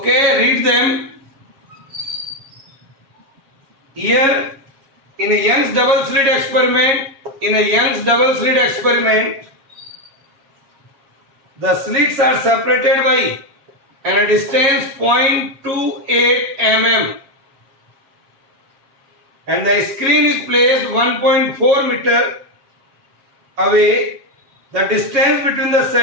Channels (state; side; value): late; left; 7.3 ms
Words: read them. Here in a Young's double slit experiment, the slits are separated by a distance 0.28 mm. And the screen is placed 1.4 meter away. The distance between the